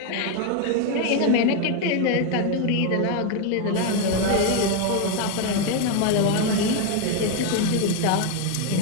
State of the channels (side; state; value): both; different; correlation 0.01